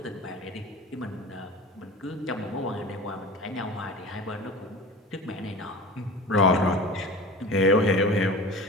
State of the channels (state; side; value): normal; both; correlation 0.36